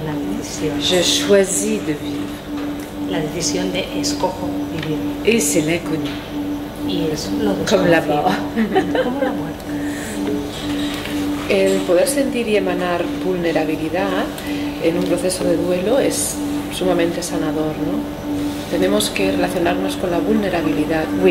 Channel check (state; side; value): identical; both; correlation 1.00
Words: una decisión. Je choisis de vivre. La decisión de escojo vivir. Et c'est l'inconnu. Y es lo Comme la desconocido. mort. Como la muerte. El poder sentir y emanar vulnerabilidad en un proceso de duelo es sumamente sanador, ¿no? Tenemos que relacionarnos con la vulnerabilidad,